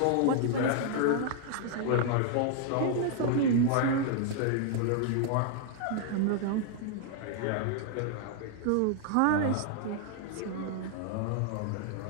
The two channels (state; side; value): different; both; correlation 0.00